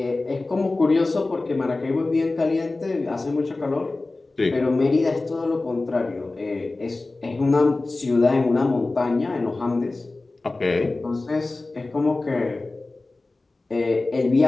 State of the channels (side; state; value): right; quieter; 3.2 dB